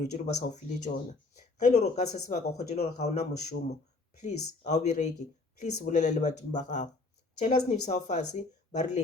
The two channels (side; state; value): right; quieter; 3.5 dB